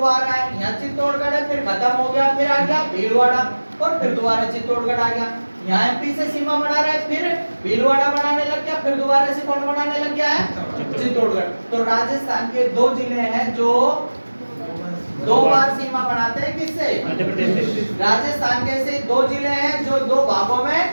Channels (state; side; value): inverted; both; correlation -1.00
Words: है, यहाँ चित्तौड़गढ़ है, फिर खत्म हो गया, फिर आ गया भीलवाड़ा और फिर दोबारा चित्तौड़गढ़ आ गया। यहाँ एमपी से सीमा बना रहा है, फिर भीलवाड़ा बनाने लग गया, फिर दोबारा से कौन बनाने लग गया है? चित्तौड़गढ़। तो राजस्थान के 2 जिले हैं जो 2 बार सीमा बनाते हैं। किससे? मध्य प्रदेश से। राजस्थान के ऐसे 2 जिले हैं जो 2 भागों में